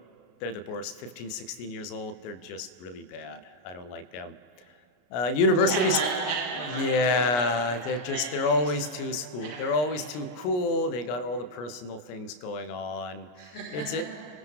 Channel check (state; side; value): late; right; 33 ms